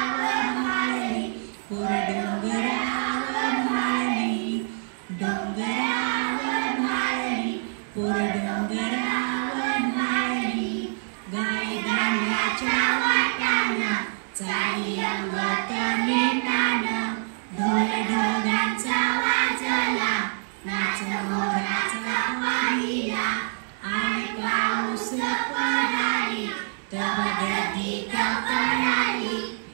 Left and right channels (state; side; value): silent; left; digital silence